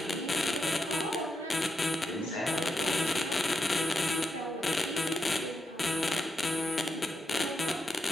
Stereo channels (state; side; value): normal; both; correlation 0.84